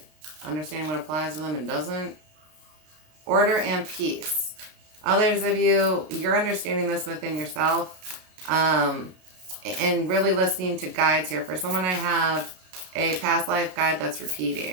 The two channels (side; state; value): left; late; 33 ms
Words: understanding what applies to them and doesn't. Order and peace. Others of you, you're understanding this within yourself and really listening to guides here. For someone, I have a past life guide that's